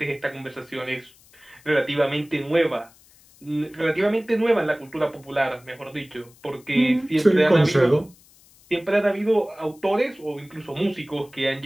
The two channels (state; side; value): noise; left; hiss, 28 dB below the sound